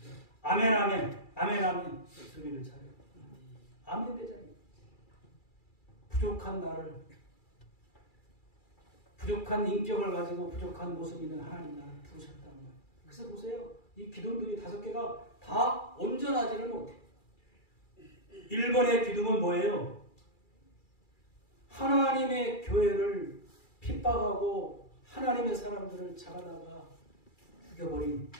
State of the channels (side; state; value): right; late; 2.3 ms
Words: 아멘 아멘, 아멘 아멘 소리를 차려요. 아멘 대장이. 부족한 나를, 부족한 인격을 가지고 부족한 모습이 있는 하나님 나를 부르셨단 말이에요. 그래서 보세요. 이 기둥들이 5개가 다 온전하지를 못해. 1번의 기둥은 뭐예요? 하나님의 교회를 핍박하고 하나님의 사람들을 잡아다가 죽여버린